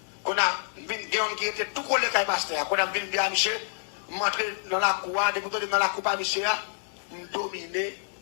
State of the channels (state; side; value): silent; right; digital silence